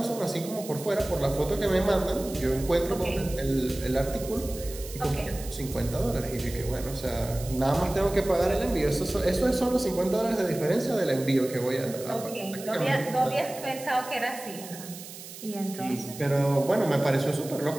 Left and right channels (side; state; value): right; noise; hiss, 14 dB below the sound